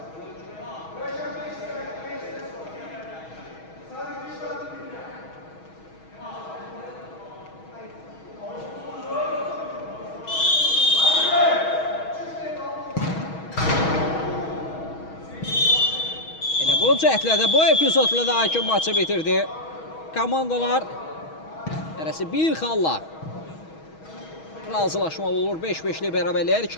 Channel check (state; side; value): late; right; 6.3 ms